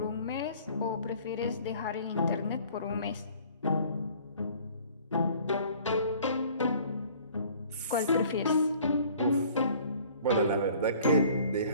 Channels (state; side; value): inverted; both; correlation -0.52